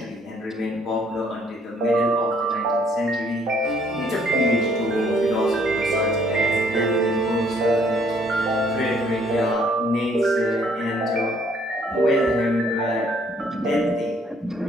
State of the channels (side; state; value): both; normal; correlation 0.64